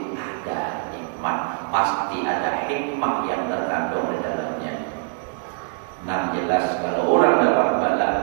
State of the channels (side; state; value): left; silent; 56 dB below the other